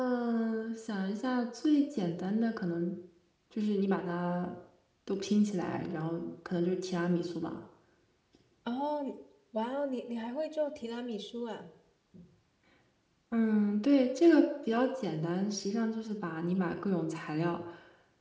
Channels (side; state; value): both; identical; correlation 1.00